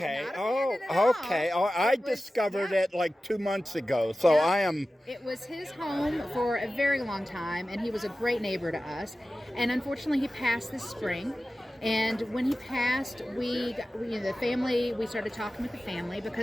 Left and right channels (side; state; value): both; normal; correlation 0.95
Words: I discovered it like 2 months ago, so Yeah. I am... It was his home for a very long time, and he was a great neighbor to us. And unfortunately, he passed this spring. And when he passed, we started talking with the family